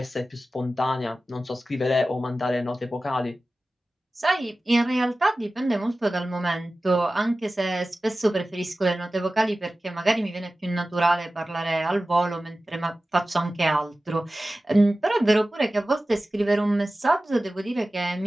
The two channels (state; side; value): normal; both; correlation 0.96